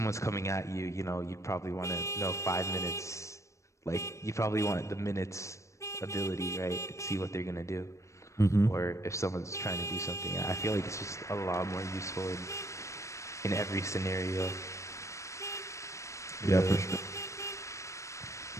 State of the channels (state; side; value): late; right; 0.15 ms